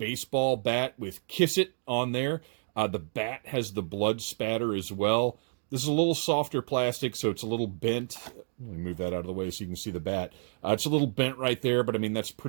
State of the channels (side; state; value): left; silent; digital silence